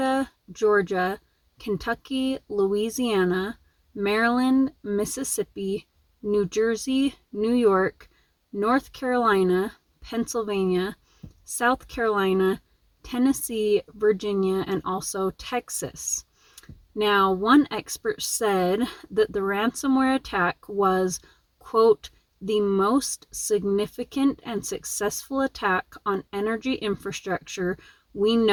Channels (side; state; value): both; identical; correlation 1.00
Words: Georgia, Kentucky, Louisiana, Maryland, Mississippi, New Jersey, New York, North Carolina, Pennsylvania, South Carolina, Tennessee, Virginia, and also Texas. Now, one expert said that the ransomware attack was, quote, the most significant and successful attack on energy infrastructure we